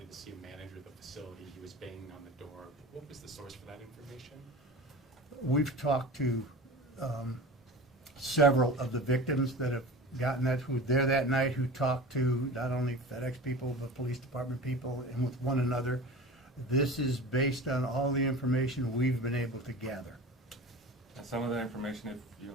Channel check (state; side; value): normal; both; correlation 0.34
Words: to see a manager of the facility. He was banging on the door. What was the source for that information? We've talked to several of the victims that have gotten that, who were there that night, who talked to not only FedEx people, but police department people, and with one another. This is based on all the information we've been able to gather. And some of that information, if you